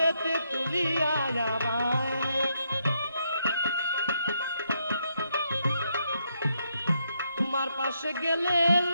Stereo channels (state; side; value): inverted; both; correlation -0.78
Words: তুলিয়া আমায়, তোমার পাশে গেলে